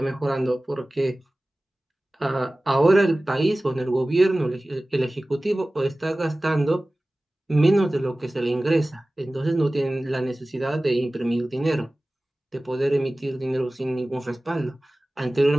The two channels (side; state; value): both; normal; correlation 0.97